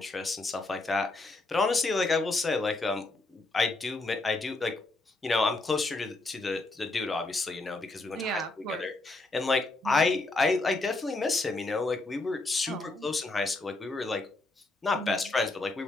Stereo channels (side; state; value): right; quieter; 3.1 dB